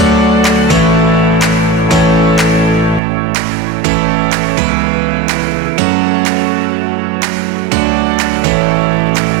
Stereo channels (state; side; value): drops out; left; at 3.0 s